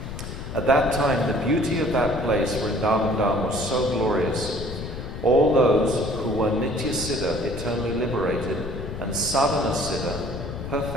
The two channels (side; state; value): left; noise; rumble, 8 dB below the sound